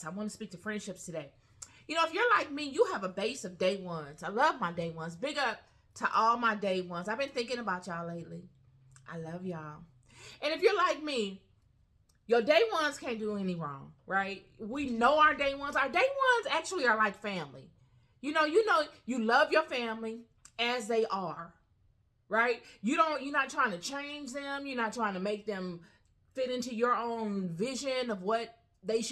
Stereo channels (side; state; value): both; identical; correlation 1.00